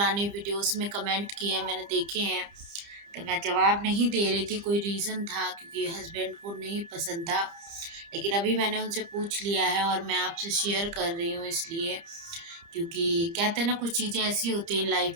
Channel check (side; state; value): left; late; 30 ms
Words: वीडियोस में कमेंट किए हैं, मैंने देखे हैं। तो मैं जवाब नहीं दे रही थी, कोई रीज़न था क्योंकि हस्बैंड को नहीं पसंद था। लेकिन अभी मैंने उनसे पूछ लिया है और मैं आपसे शेयर कर रही हूँ इसलिए, क्योंकि कहते हैं ना कुछ चीज़ें ऐसी होती हैं लाइफ